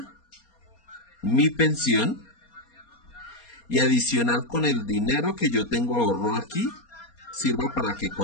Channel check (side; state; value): right; late; 4.3 ms